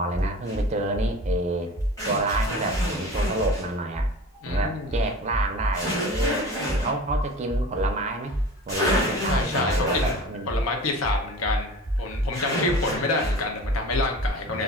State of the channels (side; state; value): both; normal; correlation 0.38